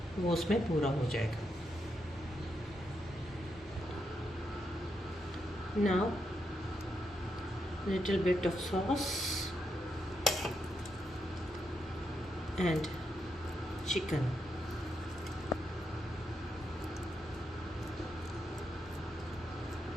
वो उसमें पूरा हो जाएगा। Now little bit of sauce and chicken.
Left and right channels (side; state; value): both; normal; correlation 0.82